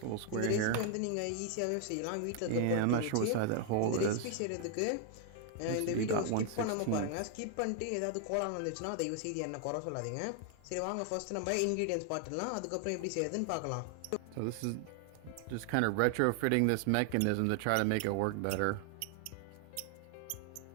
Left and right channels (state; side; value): different; both; correlation 0.00